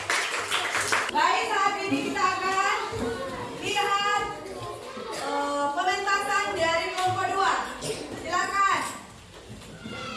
Baik, saat ini kita akan lihat pementasan dari kelompok 2. Silakan.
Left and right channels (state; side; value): identical; both; correlation 1.00